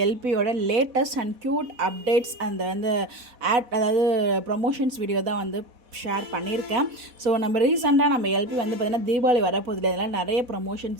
எல்பியோட லேட்டஸ்ட் அண்ட் க்யூட் அப்டேட்ஸ் அந்த அதாவது ப்ரொமோஷன்ஸ் வீடியோ தான் ஷேர் பண்ணியிருக்கேன். ஸோ நம்ம ரீசெண்டாக நம்ம எல்பி பார்த்திங்கன்னா தீபாவளி வரப்போதில்லை, இதெல்லாம் நிறைய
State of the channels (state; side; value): late; left; 4.1 ms